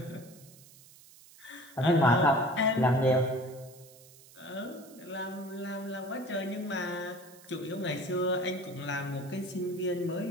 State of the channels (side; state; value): right; noise; hiss, 22 dB below the sound